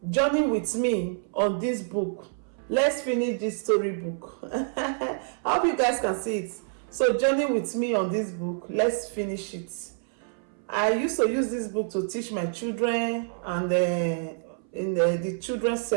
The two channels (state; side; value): silent; left; 60 dB below the other